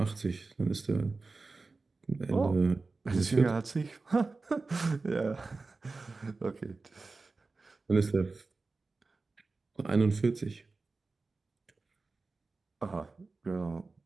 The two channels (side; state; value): left; quieter; 3.8 dB